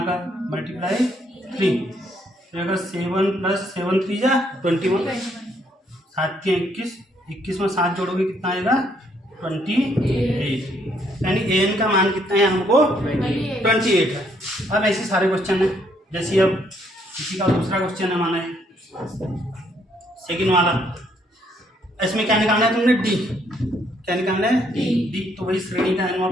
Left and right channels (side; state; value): both; normal; correlation 0.70